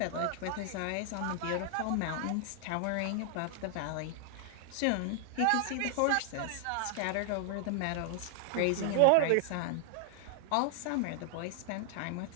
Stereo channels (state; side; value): different; both; correlation 0.00